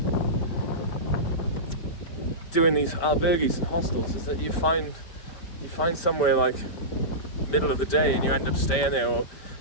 doing these albergues and hostels is that you find somewhere like middle of the day and you end up staying there or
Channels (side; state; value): right; late; 5.1 ms